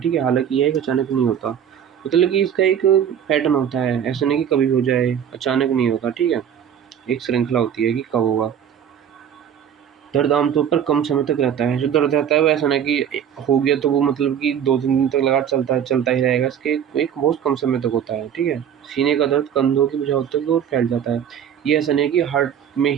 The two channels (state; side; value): quieter; left; 8.9 dB